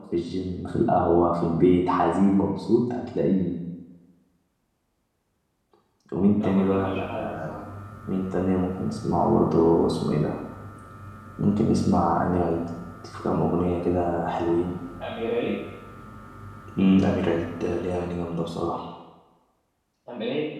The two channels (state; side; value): identical; both; correlation 1.00